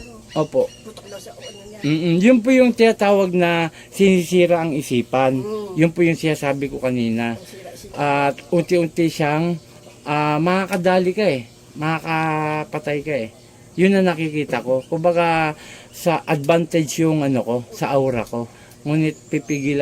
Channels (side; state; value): both; identical; correlation 1.00